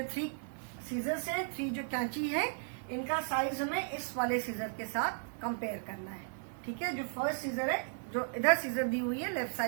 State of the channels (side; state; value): left; silent; 54 dB below the other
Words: 3 सीजर्स है, 3 जो कैंची है, इनका साइज हमें इस वाले सीजर के साथ कंपेयर करना है. ठीक है, जो फर्स्ट सीजर है, जो इधर सीजर दी हुई है लेफ्ट